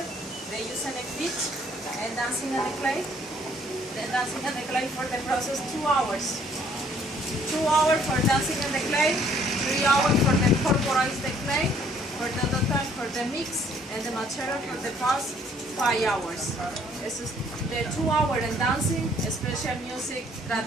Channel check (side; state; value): both; normal; correlation 0.62